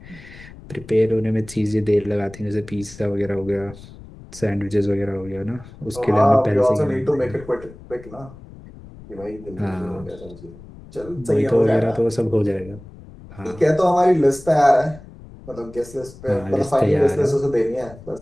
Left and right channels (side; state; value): left; noise; rumble, 18 dB below the sound